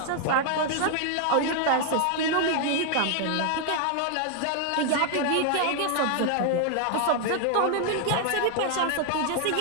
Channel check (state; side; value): different; both; correlation 0.00